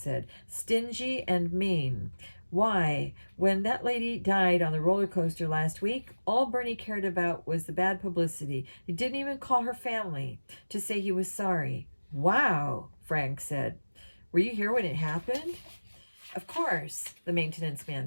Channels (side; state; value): both; inverted; correlation -1.00